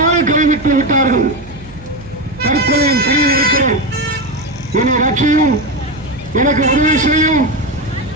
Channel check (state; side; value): noise; right; hum, 19 dB below the sound